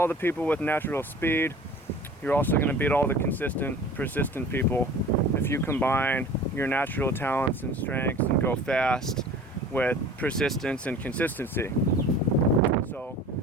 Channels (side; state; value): both; normal; correlation 0.43